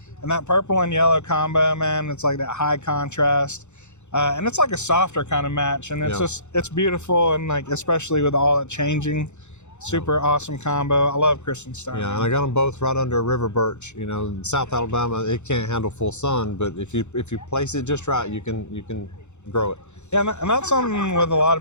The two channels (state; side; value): late; right; 0.83 ms